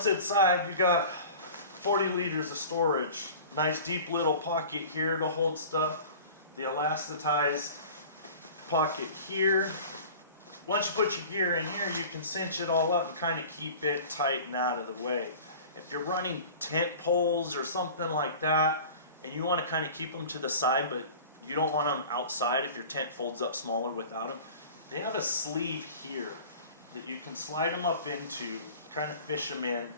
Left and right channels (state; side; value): inverted; both; correlation -0.40